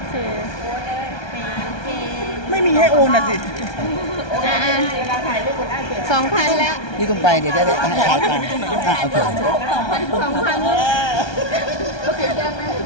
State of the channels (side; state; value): right; late; 1.2 ms